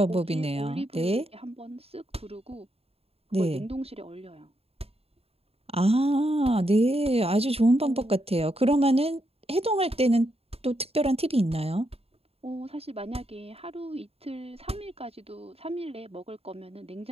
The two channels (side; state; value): left; late; 0.29 ms